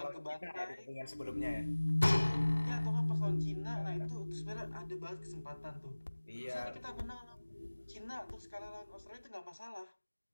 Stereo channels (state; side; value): inverted; both; correlation -1.00